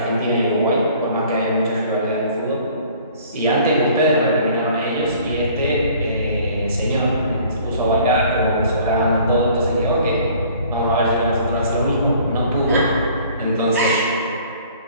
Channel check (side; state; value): both; inverted; correlation -0.53